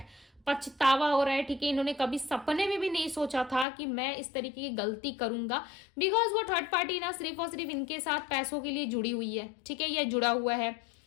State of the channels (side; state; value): right; drops out; at 3.7 s